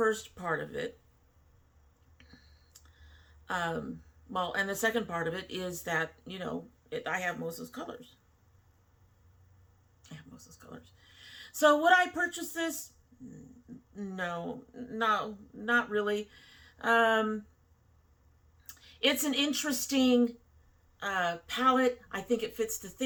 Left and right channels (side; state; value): both; identical; correlation 1.00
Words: part of it. Well, and the second part of it is that, you know, I have most of those colors. So would I purchase this? No, not really. It's an interesting palette. I think it fits the